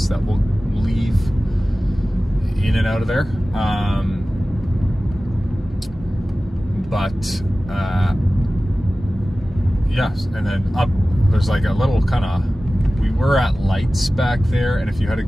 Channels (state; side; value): normal; both; correlation 0.96